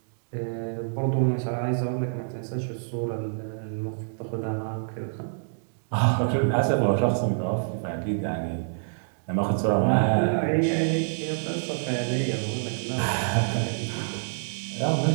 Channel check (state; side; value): silent; left; digital silence